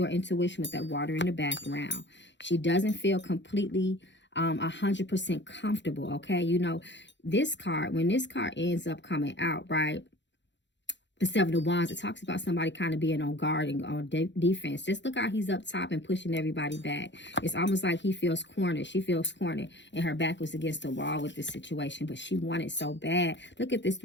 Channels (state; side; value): late; right; 0.52 ms